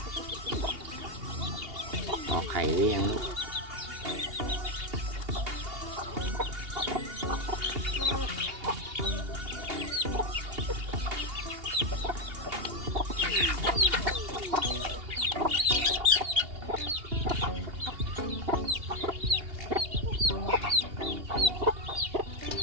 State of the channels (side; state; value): left; late; 2.8 ms